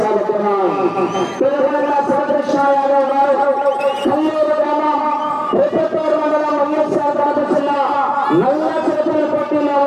తెలంగాణ శ్రీకృష్ణ యాదవ్ గారు కల్లూరు గ్రామం ప్రతిపూర్ మండలం వైఎస్ఆర్ కడప జిల్లా నల్ల చేతుల పోటీలో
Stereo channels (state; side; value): identical; both; correlation 1.00